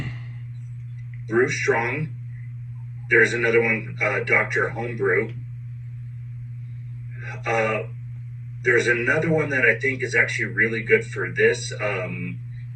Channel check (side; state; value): both; identical; correlation 1.00